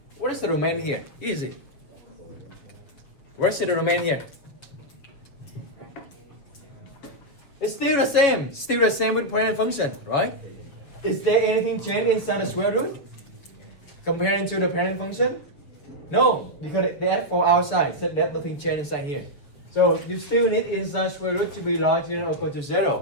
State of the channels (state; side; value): late; right; 7.3 ms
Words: What is the domain here? Easy. Where's the domain here? It's still the same. Still the same with parent function, right? Is there anything changed inside the square root? Comparing to the parent function? No, because they add 4 outside, so that nothing changed inside here. So you still need inside square root to be larger than or equal to